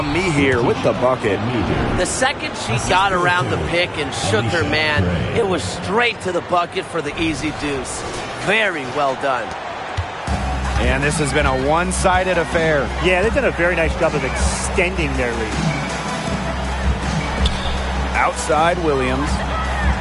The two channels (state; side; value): identical; both; correlation 1.00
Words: Me here with the bucket. The second she got around the pick and shook her man, it was straight to the bucket for the easy deuce. Very well done. And this has been a one-sided affair. Yeah, they've done a very nice job of extending their lead. Outside Williams.